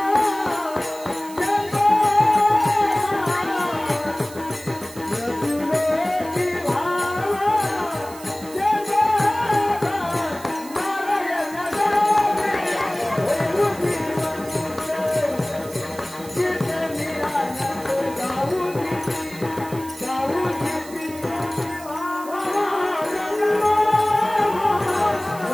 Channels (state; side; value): noise; right; hiss, 17 dB below the sound